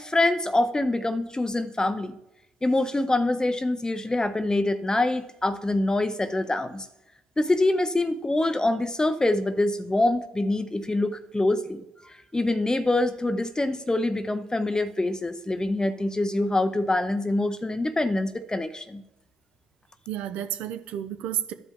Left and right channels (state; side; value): normal; both; correlation 0.91